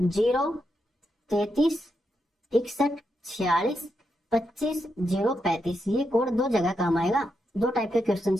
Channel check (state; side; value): normal; both; correlation 0.84